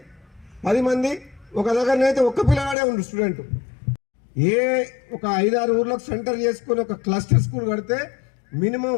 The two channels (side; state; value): right; drops out; at 2.8 s